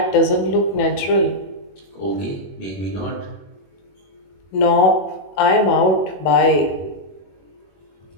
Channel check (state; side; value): late; right; 21 ms